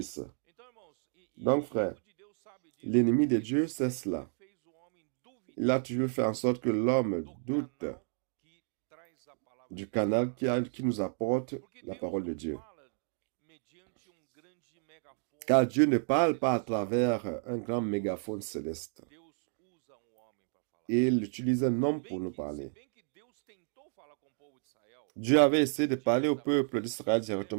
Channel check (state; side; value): silent; left; 56 dB below the other